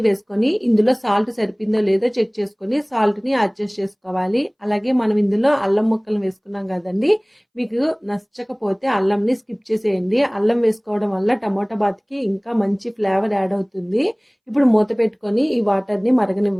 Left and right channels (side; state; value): both; identical; correlation 1.00